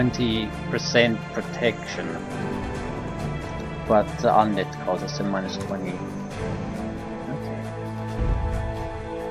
protection, but the undead causes a -20.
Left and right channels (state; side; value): identical; both; correlation 1.00